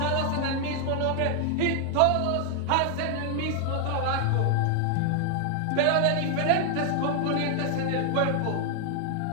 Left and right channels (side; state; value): both; different; correlation 0.00